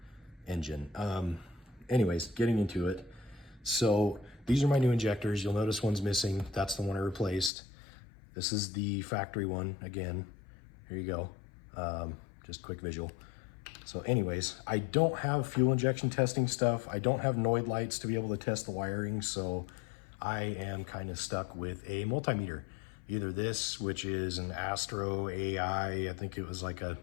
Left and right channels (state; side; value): drops out; right; at 7.5 s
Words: engine. Anyways, getting into it. So these are my new injectors. You'll notice one's missing. That's the one I replaced. This is the factory one. Again, here you go. Just quick visual. So anyways, I don't have fuel injection testing stuff. I don't have Noid lights to be able to test the wiring. So I am kind of stuck with a multimeter. Either this, which is an Astro AI. I think it was like a